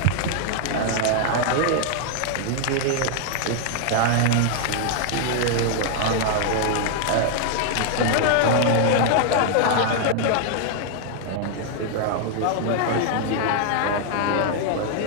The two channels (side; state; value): both; different; correlation 0.00